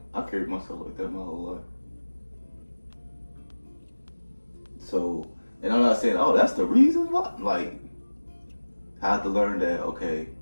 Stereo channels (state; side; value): inverted; both; correlation -1.00